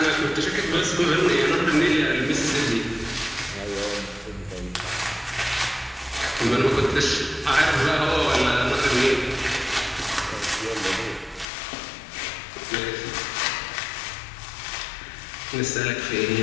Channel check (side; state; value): right; drops out; at 11.5 s